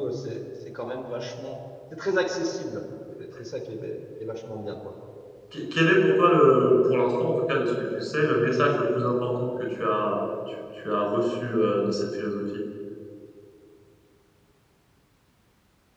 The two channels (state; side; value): identical; both; correlation 1.00